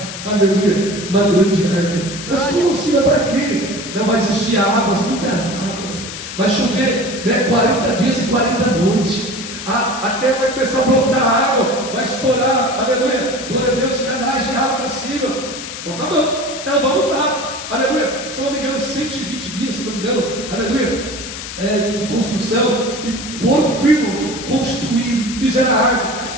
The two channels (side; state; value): left; noise; hiss, 9 dB below the sound